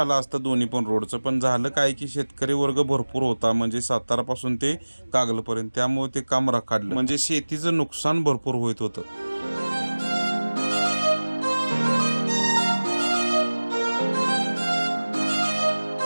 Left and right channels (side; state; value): both; inverted; correlation -1.00